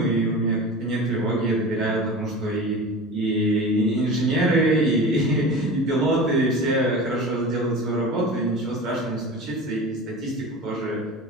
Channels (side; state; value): both; normal; correlation 0.33